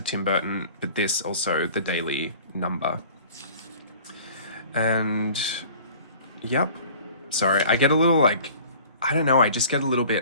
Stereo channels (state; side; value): inverted; both; correlation -0.46